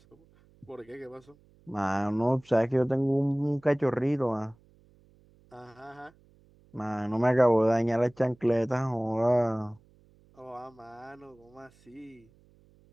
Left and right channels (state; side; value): noise; right; hum, 30 dB below the sound